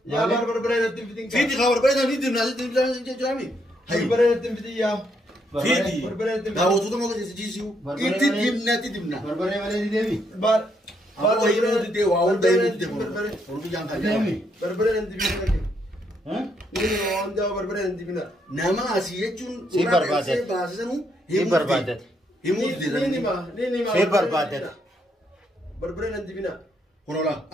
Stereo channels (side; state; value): both; normal; correlation 0.75